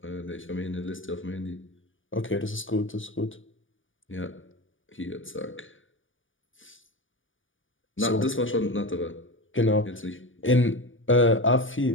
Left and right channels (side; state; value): right; late; 0.57 ms